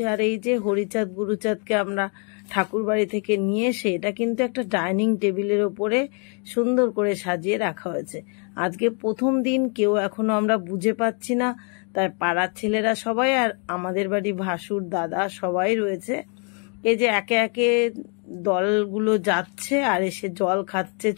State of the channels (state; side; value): quieter; right; 38.2 dB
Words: আর এই যে হরিচাঁদ গুরুচাঁদকে আমরা ঠাকুর বাড়ি থেকে নিয়ে এসে এটা কিন্তু একটা ডাইনিং টেবিলের ওপরে সুন্দর করে সাজিয়ে রাখা হয়েছে। আজকে প্রথম দিন, কেউ এখনো আমরা বুঝে পাচ্ছি না, তাই পাড়ার ছেলেরা সবাই আর আমাদের বাড়ি ভাসুর দাদা সবাই রয়েছে। এই যে একে একে দলগুলো যাচ্ছে আর এসে জল খাচ্ছে,